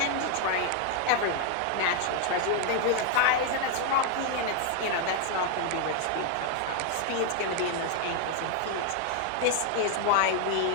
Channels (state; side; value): different; both; correlation 0.00